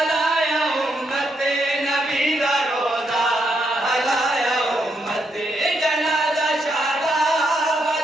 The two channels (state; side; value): normal; both; correlation 0.79